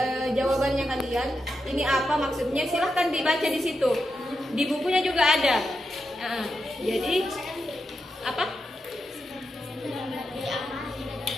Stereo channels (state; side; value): normal; both; correlation 0.87